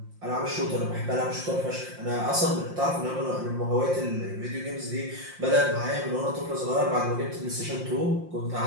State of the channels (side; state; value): left; late; 5.7 ms